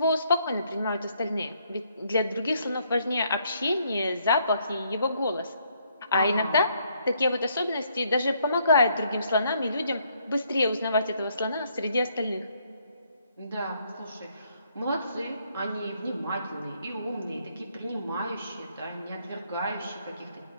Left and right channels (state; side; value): inverted; both; correlation -0.70